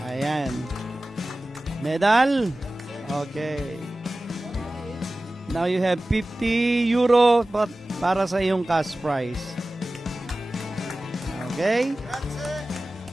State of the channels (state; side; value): normal; both; correlation 0.96